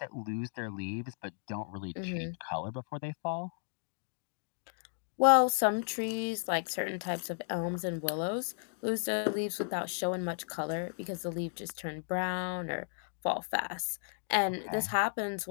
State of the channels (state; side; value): silent; right; digital silence